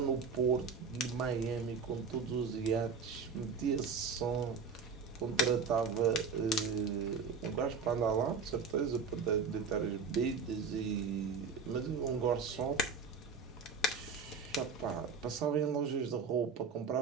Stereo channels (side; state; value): left; quieter; 5.1 dB